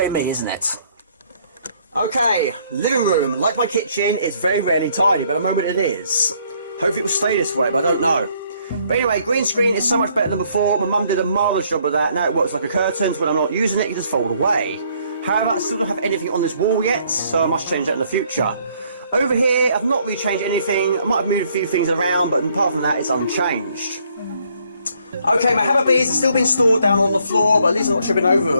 me, isn't it? Okay, living room. Like my kitchen, it's very rarely tidy, but at the moment it is. Hopefully it will stay this way, but I don't know. But anyway, green screen is so much better than before. My mum did a marvellous job of that. Now it works like a curtain, so when I'm not using it, it just fold away. However, I still don't have anything on this wall yet, so I must change that in the future. Over here, I've not really changed anything. I might have moved a few things around, but apart from that, it's unchanged. Okay, my hammer beads have still been stored down on the floor, but at least I'm not tripping over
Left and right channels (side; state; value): both; inverted; correlation -0.66